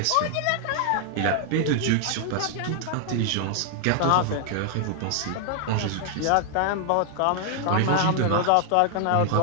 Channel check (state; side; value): different; both; correlation 0.00